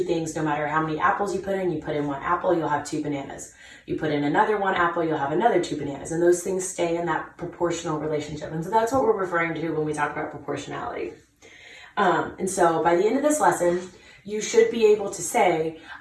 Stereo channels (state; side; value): identical; both; correlation 1.00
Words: things, no matter how many apples you put in 1 apple, you'll have 2 bananas. You put in another 1 apple, you'll have another 2 bananas. And those things stay in that proportional relationship. And so that's what we're referring to when we talk about proportionality. And so by the end of this lesson, you should be able to say,